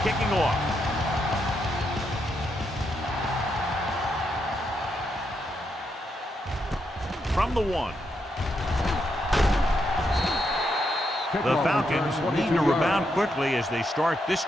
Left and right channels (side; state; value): both; normal; correlation 0.81